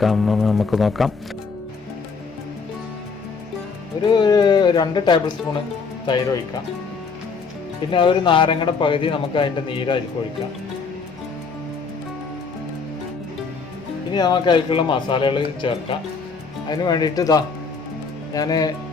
നമുക്ക് നോക്കാം. ഒരു 2 ടേബിൾ സ്പൂണ് തൈര് ഒഴിക്കാം. പിന്നെ ഒരു നാരങ്ങയുടെ പകുതി നമുക്ക് അതിൻ്റെ നീരായിരിക്കും ഒഴിക്കാം. ഇനി നമുക്ക് അതിലേക്കുള്ള മസാലകൾ ചേർക്കാം. അതിന് വേണ്ടിയിട്ട് ഞാൻ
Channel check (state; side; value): quieter; right; 5.0 dB